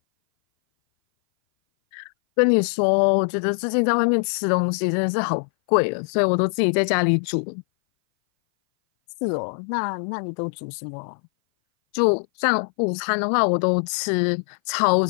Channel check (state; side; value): silent; right; 58 dB below the other